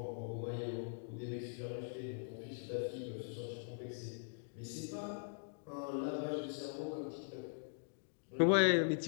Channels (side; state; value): right; silent; digital silence